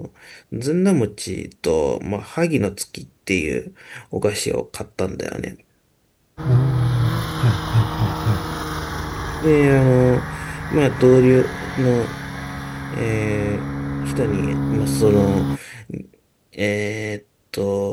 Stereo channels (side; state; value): both; identical; correlation 1.00